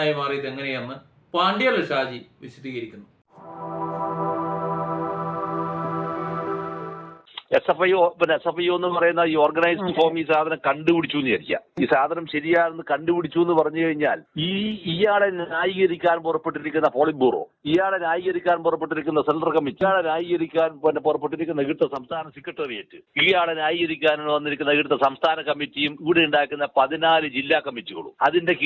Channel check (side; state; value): both; identical; correlation 1.00